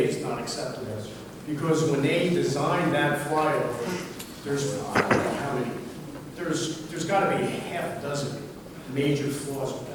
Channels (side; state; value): both; identical; correlation 1.00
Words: is not acceptable. Because when they designed that flyover, there's, I don't know how many, there's got to be half a dozen major flaws with